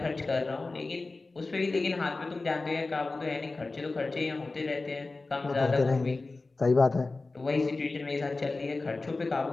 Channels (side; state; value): right; quieter; 3.5 dB